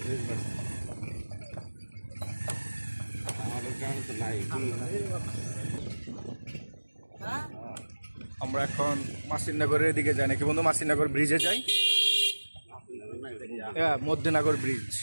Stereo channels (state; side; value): inverted; both; correlation -1.00